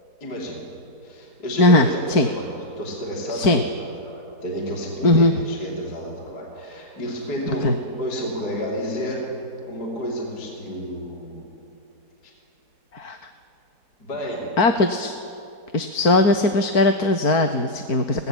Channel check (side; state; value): right; late; 4.5 ms